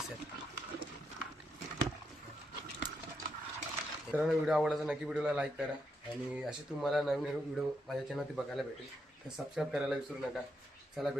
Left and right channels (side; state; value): both; normal; correlation 0.81